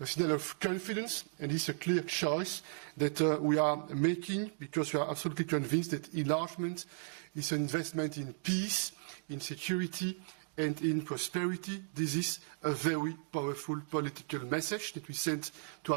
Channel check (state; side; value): silent; left; digital silence